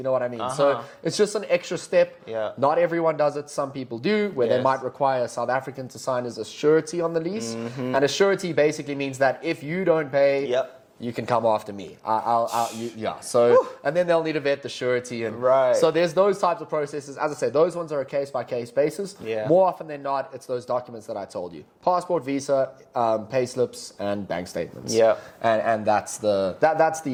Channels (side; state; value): both; identical; correlation 1.00